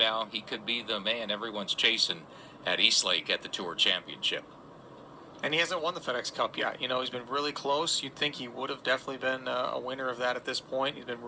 he could be the man everyone's chasing at Eastlake at the Tour Championship. And he hasn't won the FedEx Cup yet. He's been really close. You'd think he would have definitely been a winner of that at this point. He's been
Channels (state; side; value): identical; both; correlation 1.00